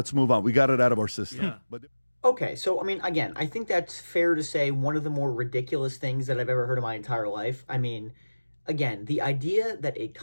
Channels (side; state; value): both; inverted; correlation -1.00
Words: move on. We got it out of our system. Yeah. But Okay, so I mean, again, I think that's fair to say one of the more ridiculous things that I've ever heard in my entire life. I mean, again, the idea that a